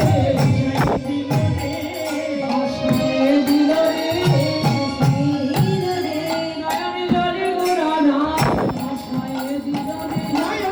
আশায় দিল রে নয়ন জলে গোরানা আশায় দিল রে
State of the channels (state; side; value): identical; both; correlation 1.00